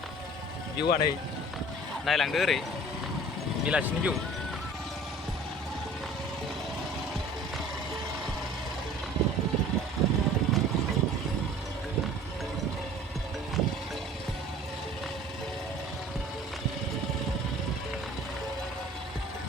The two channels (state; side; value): normal; both; correlation 0.46